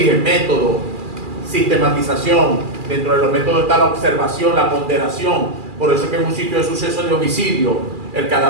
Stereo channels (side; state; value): left; late; 2.4 ms